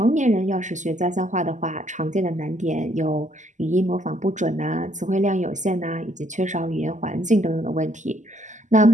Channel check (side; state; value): left; late; 0.35 ms